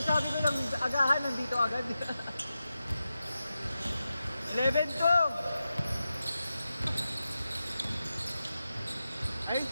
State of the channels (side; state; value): both; inverted; correlation -0.91